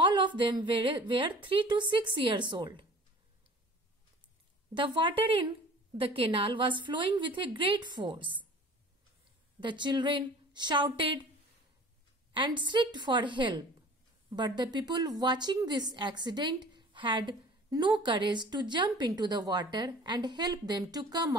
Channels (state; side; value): normal; both; correlation 0.45